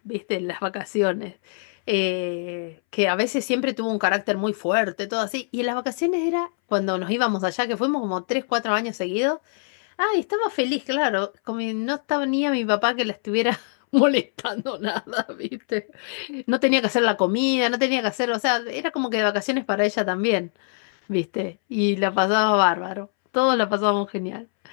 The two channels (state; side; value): silent; right; 63 dB below the other